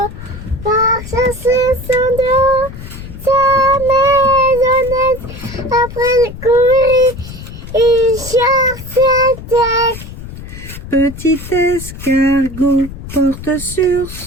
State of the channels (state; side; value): noise; left; rumble, 12 dB below the sound